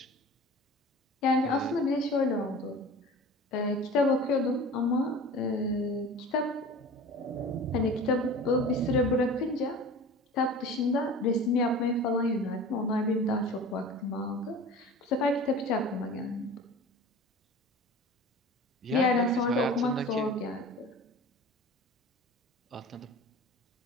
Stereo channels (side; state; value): both; normal; correlation 0.38